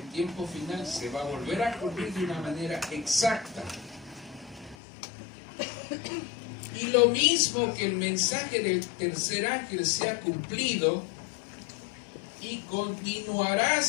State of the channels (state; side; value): drops out; right; at 4.8 s